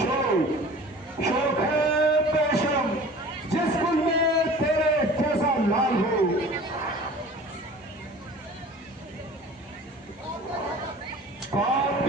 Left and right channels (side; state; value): both; normal; correlation 0.43